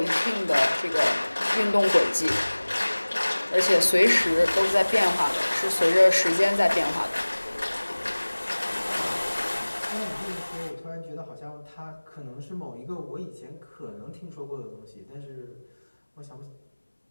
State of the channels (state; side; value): inverted; both; correlation -1.00